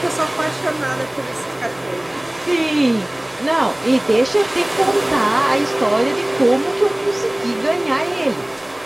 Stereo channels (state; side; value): noise; right; hum, 30 dB below the sound